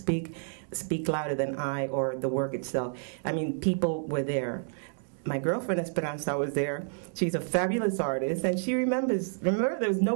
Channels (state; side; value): silent; left; digital silence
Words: Louder Than I," or the work itself. I mean, people were there. My girlfriend Esperanza was there. She's a fabulous artist, and she remember there was